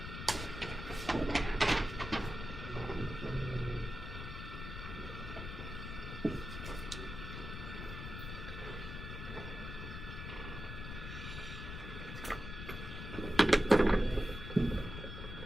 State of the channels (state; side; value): noise; left; rumble, 7 dB below the sound